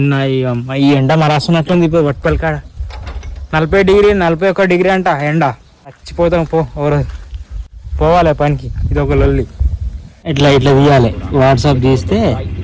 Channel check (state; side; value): identical; both; correlation 1.00